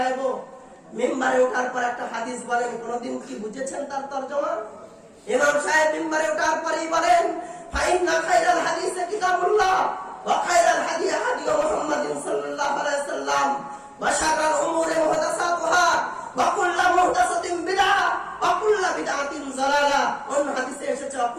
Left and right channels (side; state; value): both; identical; correlation 1.00